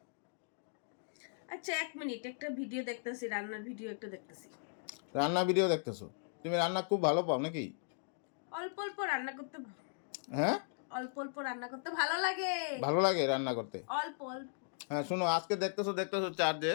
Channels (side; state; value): right; silent; digital silence